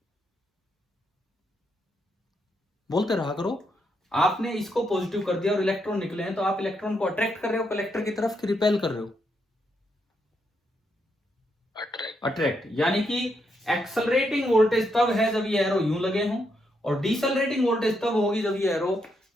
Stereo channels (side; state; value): both; normal; correlation 0.79